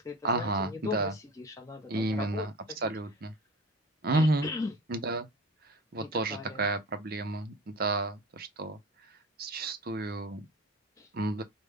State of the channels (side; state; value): both; normal; correlation 0.34